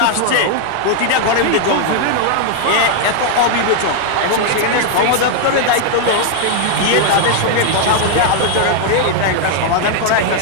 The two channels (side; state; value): both; different; correlation 0.00